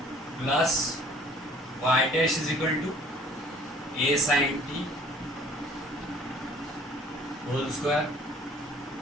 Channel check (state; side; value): normal; both; correlation 0.53